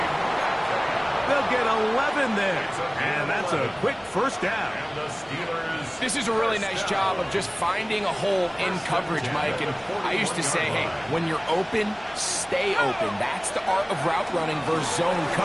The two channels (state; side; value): identical; both; correlation 1.00